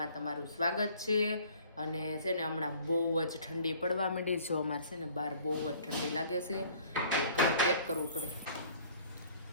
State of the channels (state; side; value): inverted; both; correlation -0.53